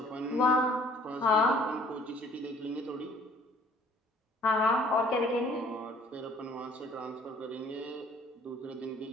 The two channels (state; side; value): normal; both; correlation 0.56